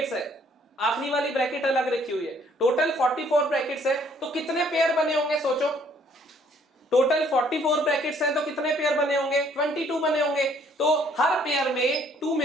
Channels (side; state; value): both; normal; correlation 0.62